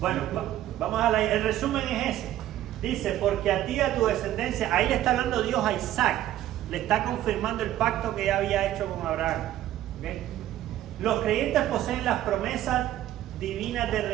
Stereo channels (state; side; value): quieter; left; 13.2 dB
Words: vamos a el resumen es ese. Dice, porque a ti y a tu descendencia, ahí le está hablando Dios a Isaac, le está confirmando el pacto que ya había hecho con Abraham. ¿Okay? Los creyentes poseen las promesas divinas de